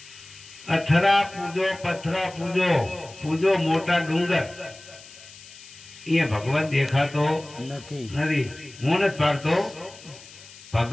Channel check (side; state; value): left; noise; hiss, 19 dB below the sound